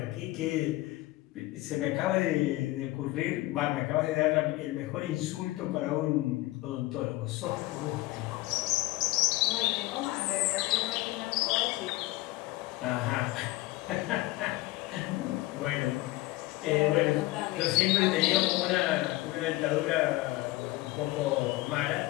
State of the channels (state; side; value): quieter; right; 19.3 dB